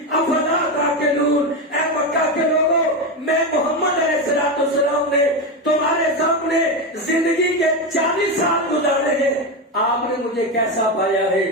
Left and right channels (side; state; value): both; normal; correlation 0.13